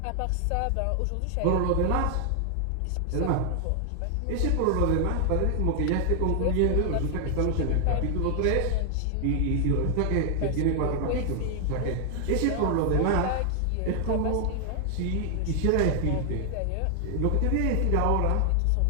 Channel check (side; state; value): both; different; correlation 0.00